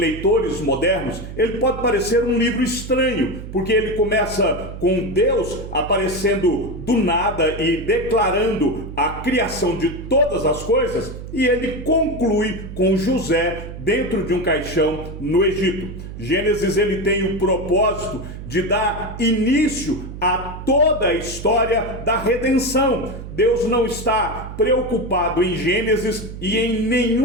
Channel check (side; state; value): right; noise; hum, 10 dB below the sound